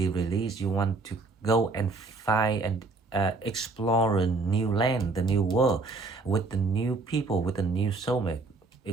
released. You want to go and find and explore a new land, the new world, with the new people, with the new soulmate.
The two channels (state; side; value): quieter; left; 3.6 dB